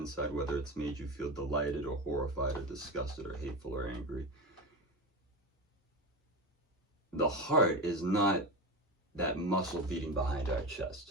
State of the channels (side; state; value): both; normal; correlation 0.21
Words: whether it's made you feel delighted or horrified or disgusted or hateful or angry. The heart is not that muscle beating behind our